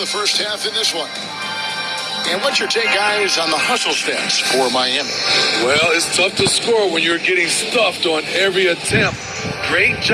first half in this one. And what's your take, guys, on the hustle stats for Miami? Well, it's tough to score when you're getting stuffed on every attempt. Great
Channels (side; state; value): both; identical; correlation 1.00